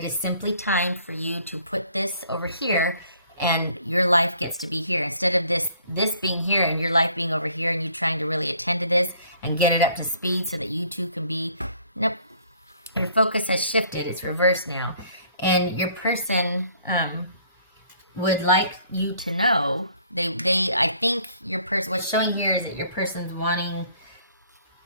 is simply time for you to put this over here and your life gets to be here. Instead of this being here and your life being over here and you trying to really attend to this and get it up to speed so that you two can be, nope. Your focus has shifted. It's reversed now. And your person would like you to know, I think your person, what's showing here is that your person's wanting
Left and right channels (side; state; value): both; inverted; correlation -0.59